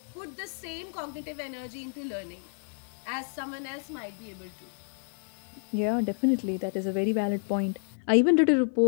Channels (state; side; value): silent; right; 58 dB below the other